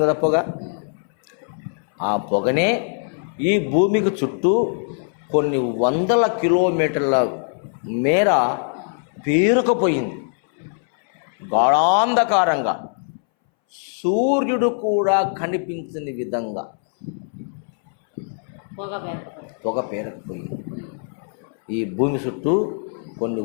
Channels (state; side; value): silent; right; 62 dB below the other